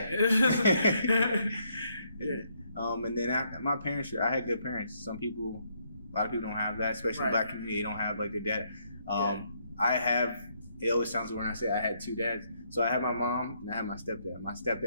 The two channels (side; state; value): both; inverted; correlation -0.73